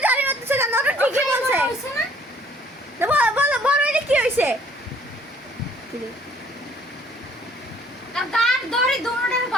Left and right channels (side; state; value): both; normal; correlation 0.59